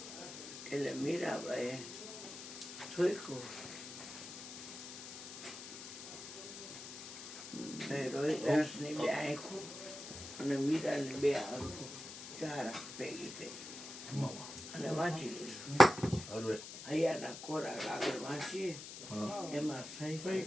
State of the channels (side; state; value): left; noise; hiss, 11 dB below the sound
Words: એટલે મીરાબાઈએ ઠોક્યું. રોહિદાસની બે આંખો અને મીરાની બે આંખો, ચાર આંખ ભેગી થઈ અને વાંચી લીધું. હૈયાના ખોરાક આગળ વાંચીએ, એમાં સહી